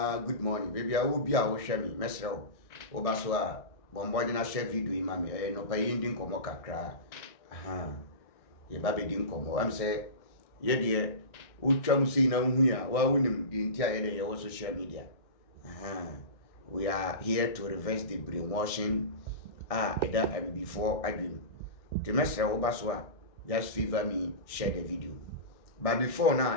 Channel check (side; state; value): right; late; 1.6 ms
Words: good morning baby a wo bia wo hwe me mesre wo ba so a bombo na share video yi ma me no pa yi ndi nkomo kakra aha ye ba be di nkomo am say ye de utwam sei na hu ya wa wunim di ntia ye de ye wo social media aha we are here to reverse the brainwashing eda before adwim the mesre wo ba so a just favor me share the video. But before